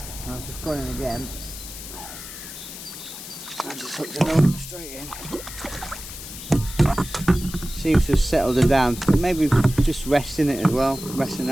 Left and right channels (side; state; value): left; noise; hiss, 11 dB below the sound